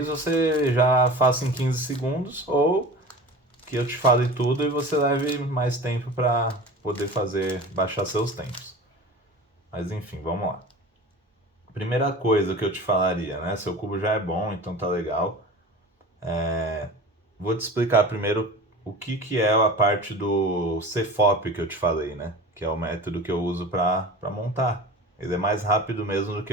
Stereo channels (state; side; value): normal; both; correlation 0.36